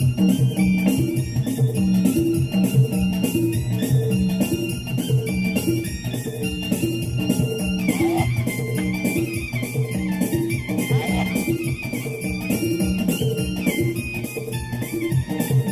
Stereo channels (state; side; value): identical; both; correlation 1.00